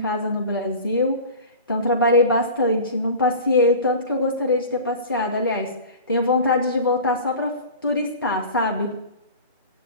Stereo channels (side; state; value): both; inverted; correlation -0.36